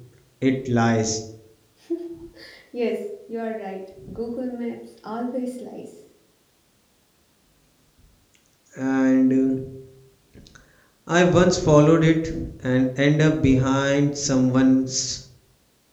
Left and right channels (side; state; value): both; identical; correlation 1.00